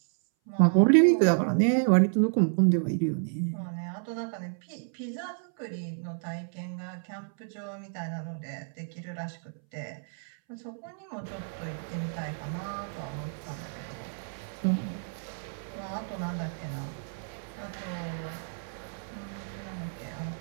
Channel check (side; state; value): left; silent; 58 dB below the other